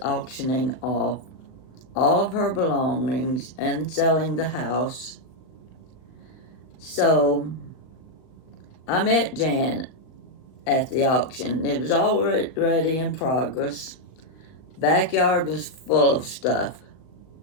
auctioning off all of her belongings and selling the house. So I met Jan at the auction. It was already in progress. Backyard was full of stuff,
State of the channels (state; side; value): late; right; 38 ms